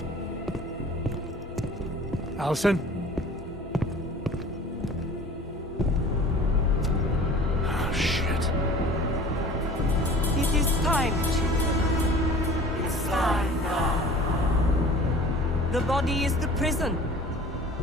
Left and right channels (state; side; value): normal; both; correlation 0.44